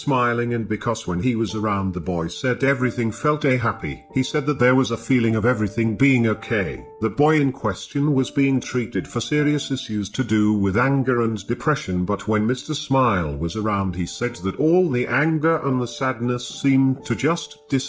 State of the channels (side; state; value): both; identical; correlation 1.00